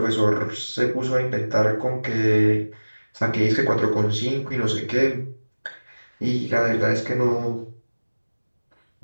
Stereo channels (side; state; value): both; inverted; correlation -1.00